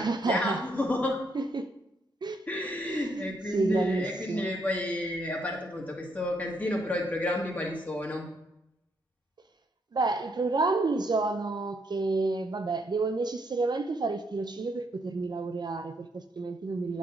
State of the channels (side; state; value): both; normal; correlation 0.74